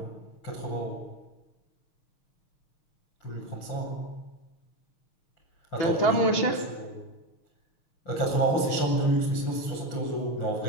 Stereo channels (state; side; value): late; right; 6.4 ms